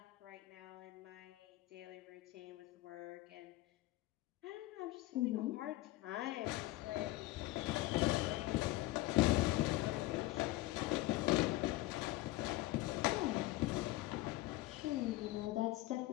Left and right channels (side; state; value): right; quieter; 18.1 dB